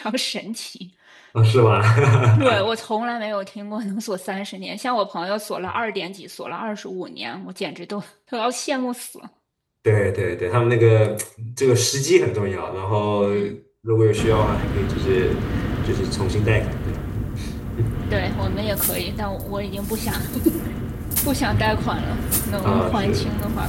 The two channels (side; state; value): both; identical; correlation 1.00